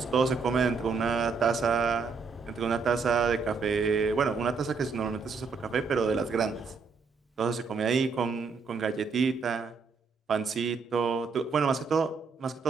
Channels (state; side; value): quieter; left; 4.9 dB